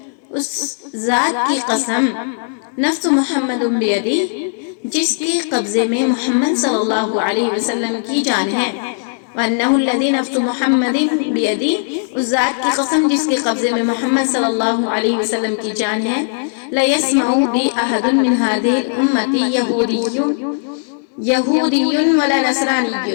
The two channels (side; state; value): right; silent; digital silence